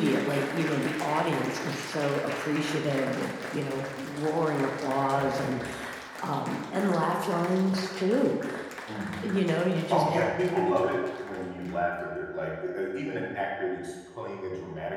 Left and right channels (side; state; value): both; identical; correlation 1.00